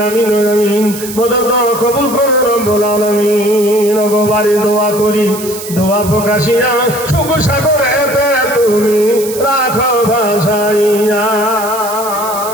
আমিন আমিন। মদদ কবুল করে রব্বুল আলামিন। গো বাড়ি দোয়া করি, দোয়া প্রকাশিয়া সুখ সাগরেতে তুমি রাখো ভাসাইয়া।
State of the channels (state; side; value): noise; right; hiss, 11 dB below the sound